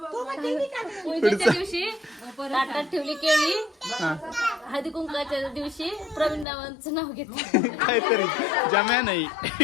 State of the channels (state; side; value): drops out; right; at 6.5 s